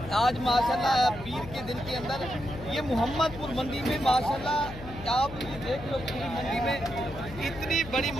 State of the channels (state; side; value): noise; left; hum, 13 dB below the sound